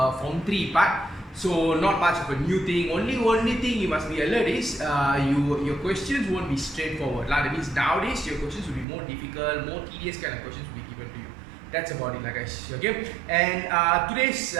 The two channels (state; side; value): drops out; left; at 8.8 s